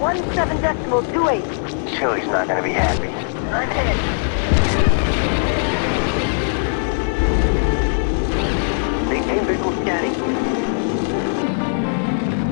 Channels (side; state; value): right; silent; digital silence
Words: Chili's not gonna be happy. I'm hit. Maintain visual scanning.